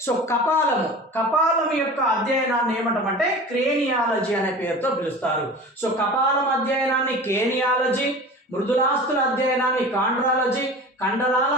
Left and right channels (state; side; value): normal; both; correlation 0.37